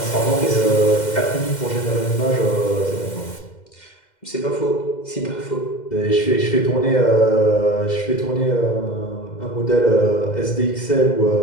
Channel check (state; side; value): late; right; 2.1 ms